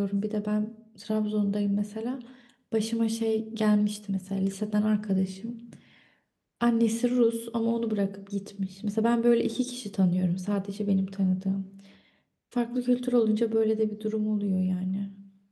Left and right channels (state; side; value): identical; both; correlation 1.00